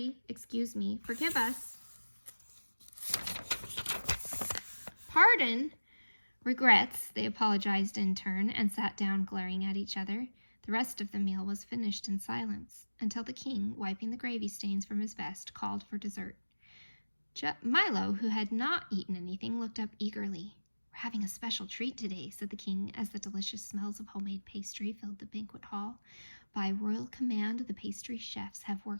excuse me, forgive us." "Pardon?" "Regrets," they apologized in turn, and sat down glaring at each other. The rest of the meal was finished in silence, until the king, wiping the gravy stains from his vest, called for dessert. Milo, who had not eaten anything, looked up eagerly. "We're having a special treat today," said the king, as the delicious smells of homemade pastry filled the banquet hall. "By royal command, the pastry chefs have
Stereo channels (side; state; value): both; inverted; correlation -1.00